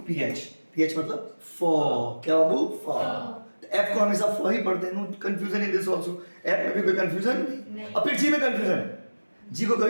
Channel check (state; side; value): inverted; both; correlation -1.00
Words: पीएच, पीएच मतलब फॉ। क्या बाबू, फॉ। एफ को हमेशा फॉ ही पढ़ते हैं, no confusion in this also. F में भी कोई कंफ्यूजन नहीं। और फिर जी में कंफ्यूजन है, जी को